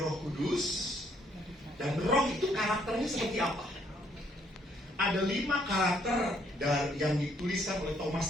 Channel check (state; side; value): normal; both; correlation 0.69